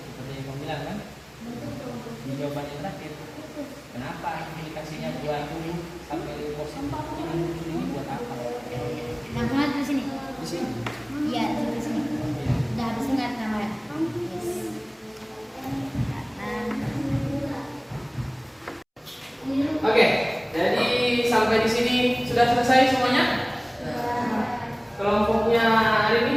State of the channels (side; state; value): both; identical; correlation 1.00